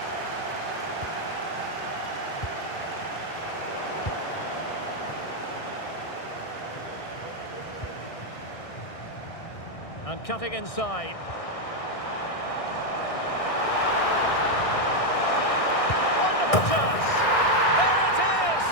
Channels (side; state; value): right; late; 1.6 ms